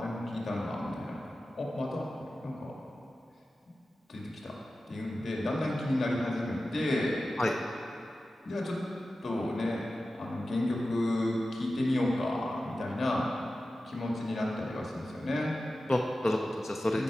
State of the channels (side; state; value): both; normal; correlation 0.94